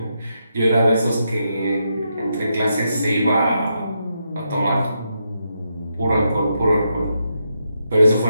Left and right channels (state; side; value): inverted; both; correlation -0.82